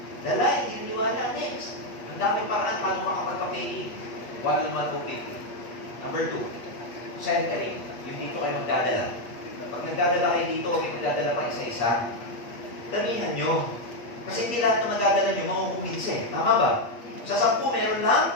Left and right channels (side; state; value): right; late; 8.4 ms